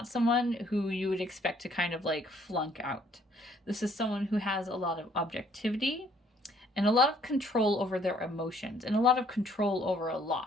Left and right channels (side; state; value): both; normal; correlation 0.63